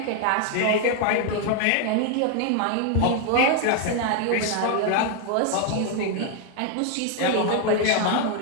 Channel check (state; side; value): different; both; correlation 0.00